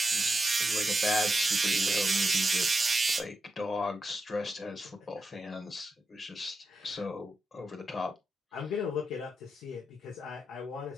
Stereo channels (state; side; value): normal; both; correlation 0.87